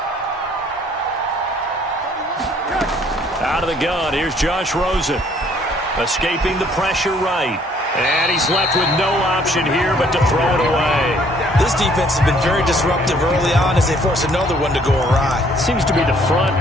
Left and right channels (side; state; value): both; normal; correlation 0.62